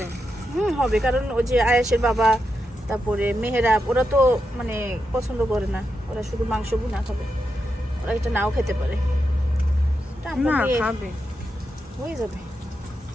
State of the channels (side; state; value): both; normal; correlation 0.86